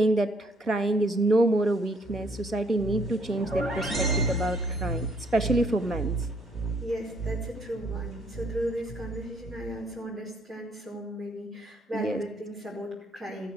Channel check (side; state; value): both; normal; correlation 0.66